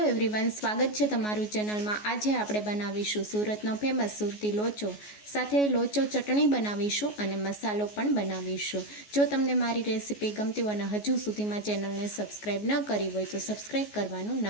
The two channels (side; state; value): right; late; 14 ms